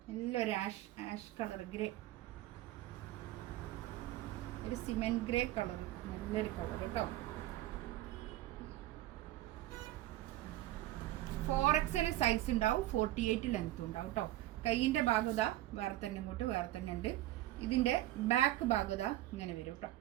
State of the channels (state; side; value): quieter; left; 15.5 dB